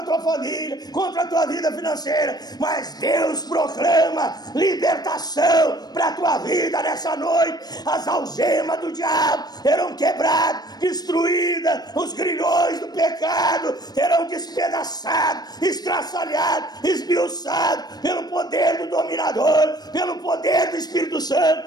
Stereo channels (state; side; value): late; right; 0.19 ms